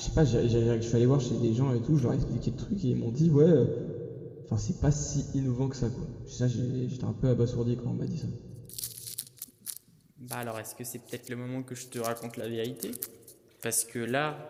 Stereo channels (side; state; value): both; identical; correlation 1.00